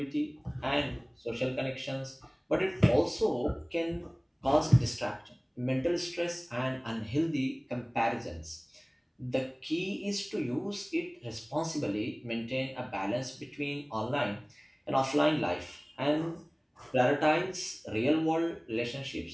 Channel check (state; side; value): identical; both; correlation 1.00